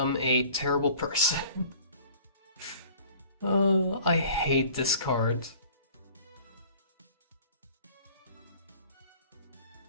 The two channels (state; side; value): inverted; both; correlation -0.49